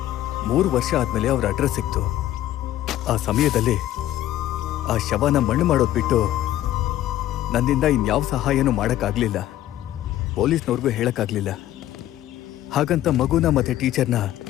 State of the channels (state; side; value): quieter; right; 13.4 dB